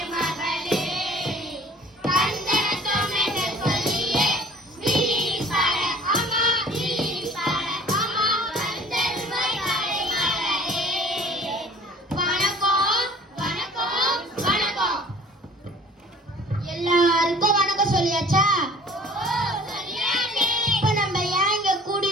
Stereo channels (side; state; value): both; normal; correlation 0.49